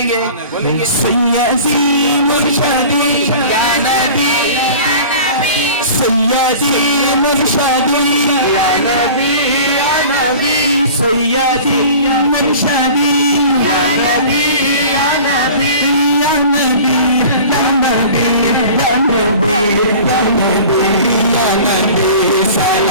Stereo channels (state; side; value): inverted; both; correlation -0.41